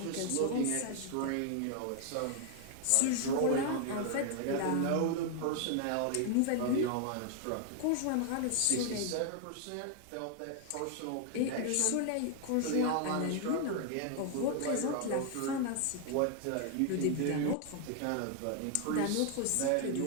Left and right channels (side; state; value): both; different; correlation 0.00